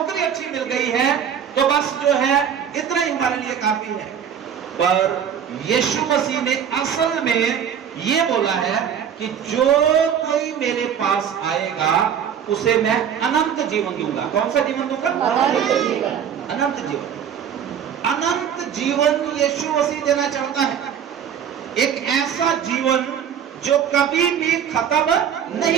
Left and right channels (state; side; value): quieter; left; 8.4 dB